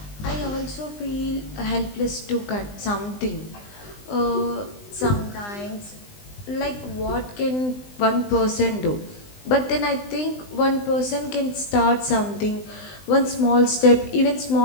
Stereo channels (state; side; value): late; right; 20 ms